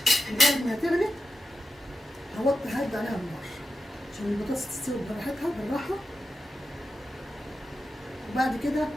لغايه ما تغلي ههدي عليها النار عشان البطاطس تستوي براحتها بالراحه، وبعد كده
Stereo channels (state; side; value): normal; both; correlation 0.89